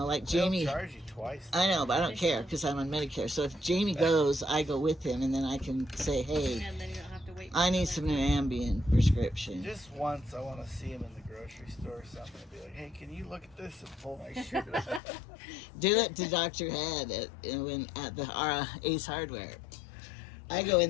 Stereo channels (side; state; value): right; drops out; at 15.0 s